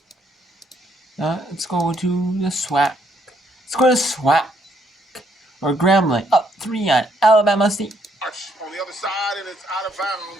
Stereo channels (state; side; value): normal; both; correlation 0.71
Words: Let's go to the SWAC. Let's go to SWAC. Or Grambling up 3 on Alabama State. On the other side, and it's out of